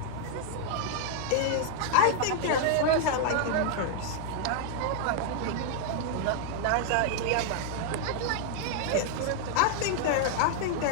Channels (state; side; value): different; both; correlation 0.00